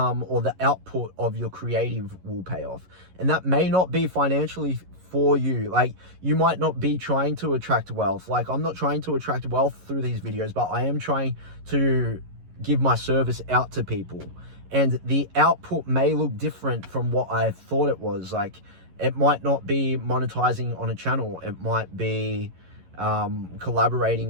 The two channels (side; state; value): left; late; 11 ms